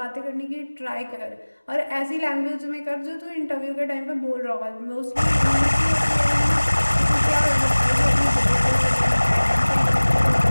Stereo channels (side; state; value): both; inverted; correlation -1.00